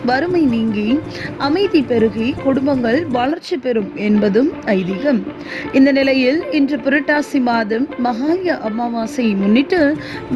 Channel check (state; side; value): identical; both; correlation 1.00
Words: வறுமை நீங்கி அமைதி பெருகி குடும்பங்கள் வளர்ச்சி பெறும் என்பதும் ஐதீகம். இந்த நிலையில் இன்று புரட்டாசி மாதம் மகாலய அமாவாசையை முன்னிட்டு